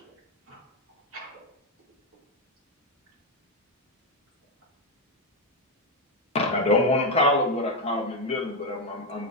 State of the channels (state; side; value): normal; both; correlation 0.06